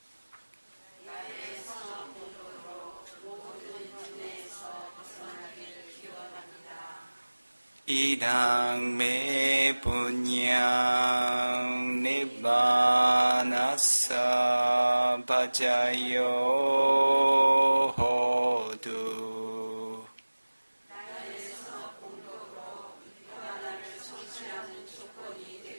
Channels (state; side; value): inverted; both; correlation -1.00